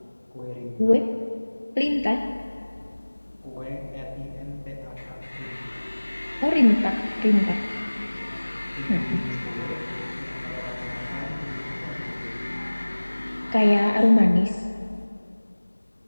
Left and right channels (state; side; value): inverted; both; correlation -1.00